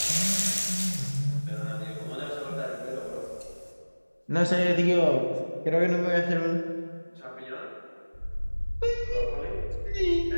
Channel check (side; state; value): both; inverted; correlation -1.00